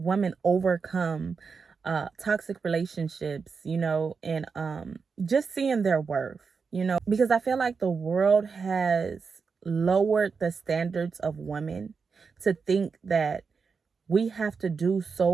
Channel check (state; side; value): quieter; left; 5.3 dB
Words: overcome toxic relationships, and just seeing their worth, because I feel like the world has lowered the standards of women to think that we have to do